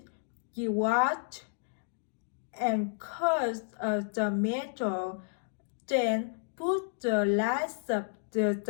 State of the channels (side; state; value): right; silent; digital silence